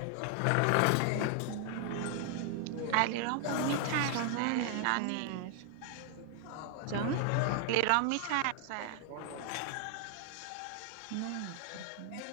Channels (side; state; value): both; different; correlation 0.00